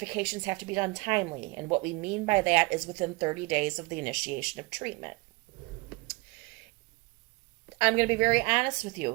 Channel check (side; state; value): left; quieter; 25.8 dB